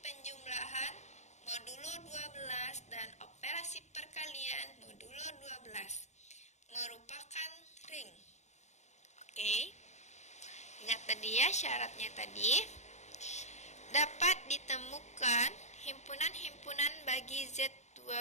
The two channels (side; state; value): right; late; 0.33 ms